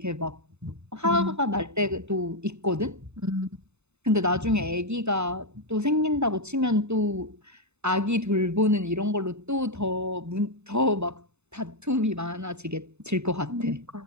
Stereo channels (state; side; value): late; left; 0.81 ms